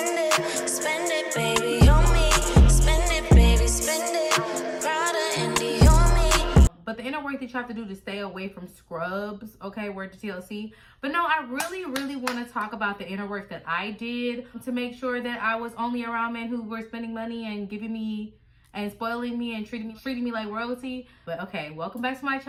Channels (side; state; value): both; identical; correlation 1.00